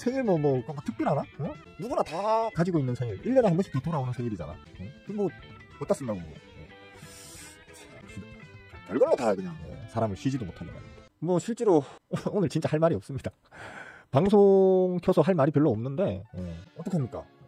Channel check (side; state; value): both; identical; correlation 1.00